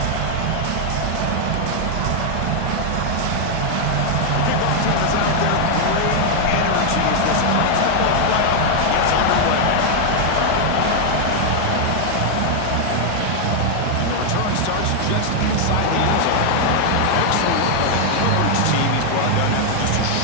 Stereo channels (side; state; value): both; different; correlation 0.00